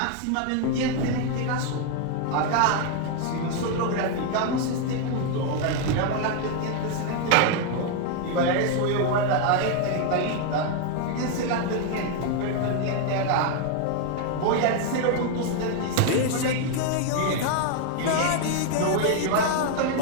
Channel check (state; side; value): different; both; correlation 0.00